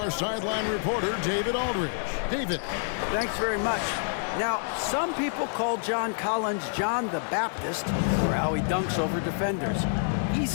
sideline reporter, David Aldridge. David. Thanks very much. Now, some people call John Collins John the Baptist for how he dunks over defenders. He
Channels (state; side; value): silent; right; digital silence